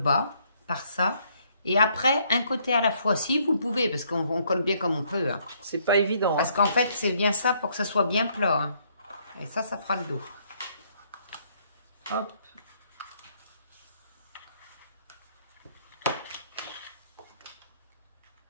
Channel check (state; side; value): inverted; both; correlation -0.68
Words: par ça. Et après, un côté à la fois, si vous pouvez, parce qu'on colle bien comme on peut. Hein. C'est pas évident. Parce qu'en fait, c'est bien ça pour que ça soit bien plat. Hein. Et ça fera le dos. Hop.